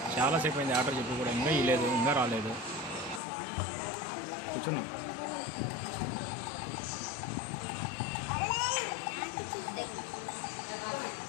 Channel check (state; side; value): drops out; right; at 3.2 s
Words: చాలాసేపు అయింది ఆర్డర్ చెప్పి కూడా ఇంకా ఇవ్వలేదు, ఇంకా రాలేదు. కూర్చున్నాం.